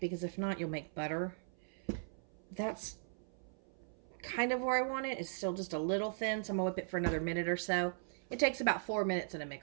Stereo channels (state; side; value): silent; left; 52 dB below the other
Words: because if not, you'll make butter. That's kind of where I want it. It's still just a little thin, so I'm going to whip it for another minute or so. It takes about 4 minutes in a